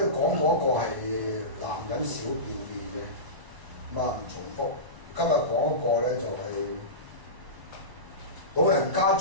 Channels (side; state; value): left; late; 1.0 ms